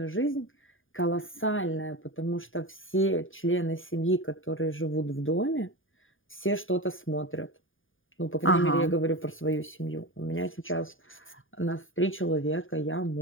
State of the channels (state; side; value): late; right; 0.58 ms